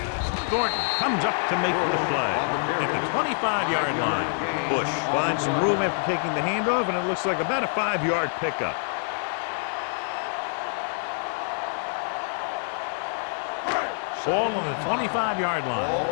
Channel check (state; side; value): silent; right; digital silence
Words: Thornton comes up to make the play at the 25-yard line. Bush finds some room after taking the handoff, and it looks like about a 5-yard pickup. Ball on the 25-yard line. Ball